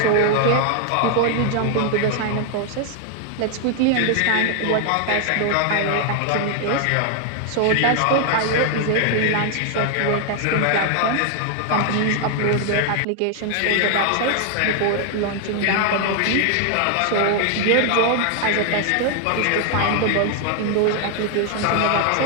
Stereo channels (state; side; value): different; both; correlation 0.00